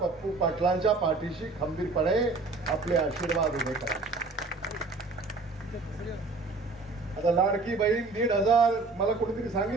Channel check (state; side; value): quieter; left; 3.7 dB